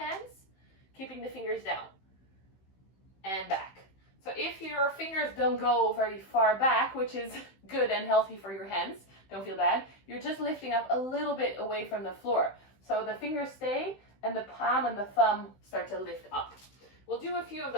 keeping the fingers down and back. So if your fingers don't go very far back, which is good and healthy for your hands, don't feel bad, you're just lifting up a little bit away from the floor. So the fingers stay and the palm and the thumb start to lift up. We'll do a few of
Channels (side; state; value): right; late; 15 ms